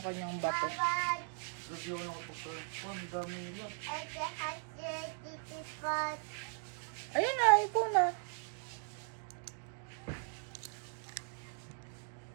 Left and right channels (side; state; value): left; silent; 52 dB below the other